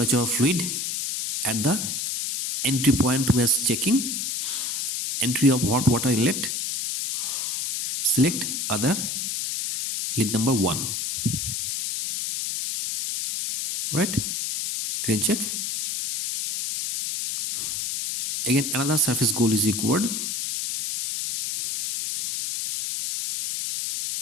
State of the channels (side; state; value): left; noise; hiss, 2 dB below the sound